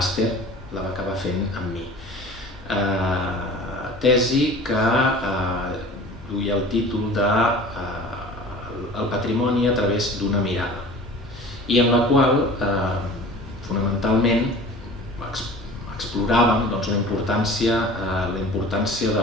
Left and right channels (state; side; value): normal; both; correlation 0.41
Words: la va acabar fent amb mi. Tesi que duia el títol de El patrimoni a través d'una mirada, i en la qual fonamentalment exploràvem la importància de